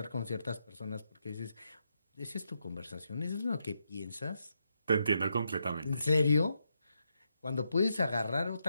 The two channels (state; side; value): inverted; both; correlation -0.82